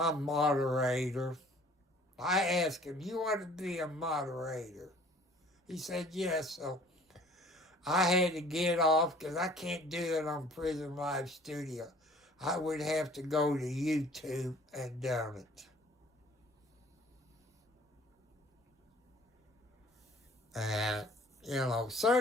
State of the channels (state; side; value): normal; both; correlation 0.52